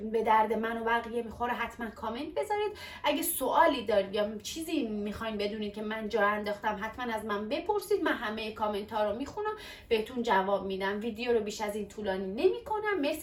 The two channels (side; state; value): both; identical; correlation 1.00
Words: درد من و بقیه میخوره، حتما کامنت بذارید. اگه سوالی دارید یا چیزی میخواین بدونید که من جا انداختم، حتما از من بپرسید. من همه کامنت ها رو میخونم، بهتون جواب میدم. ویدیو رو بیش از این طولانی نمیکنم.